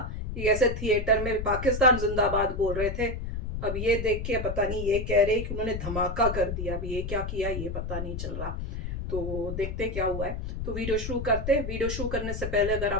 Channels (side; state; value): left; noise; rumble, 5 dB below the sound